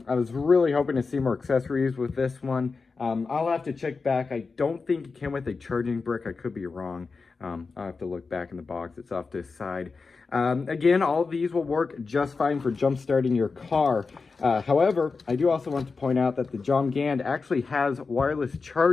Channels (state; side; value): quieter; right; 4.5 dB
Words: was really hoping to see more accessories with this one. I'll have to check back. I don't think it came with a charging brick. I could be wrong. I'll have to look back in the box. It's off to the side. Again, all of these will work just fine for jump starting your car. However, I do also want to point out that the Jomgand actually has wireless